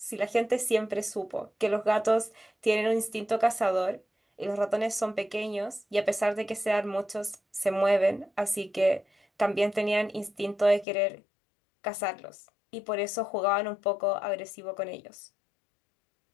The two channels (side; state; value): right; drops out; at 10.9 s